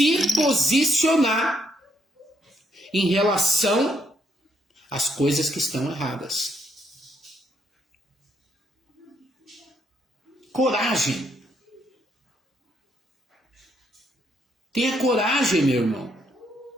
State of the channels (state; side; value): normal; both; correlation 0.73